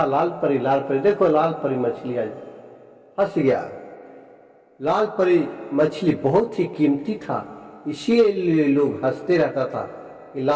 लाल परी, देखो लाल परी मछली आज फंस गया। लाल परी मछली बहुत ही कीमती था, इसीलिए लोग हंसते रहता था कि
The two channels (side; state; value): both; identical; correlation 1.00